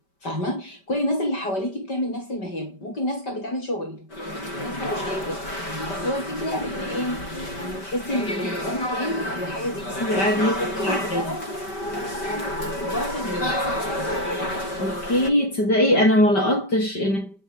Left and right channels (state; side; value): late; right; 5.1 ms